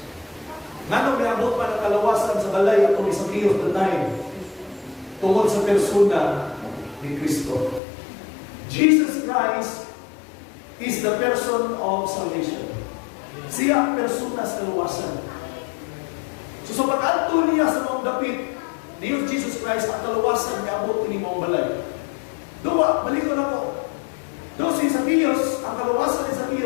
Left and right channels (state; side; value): drops out; right; at 7.8 s